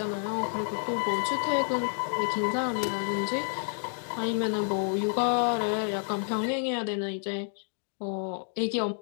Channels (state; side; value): silent; right; 58 dB below the other